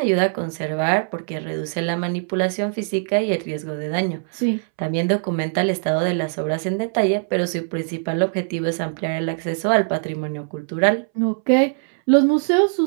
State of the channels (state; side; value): silent; left; 64 dB below the other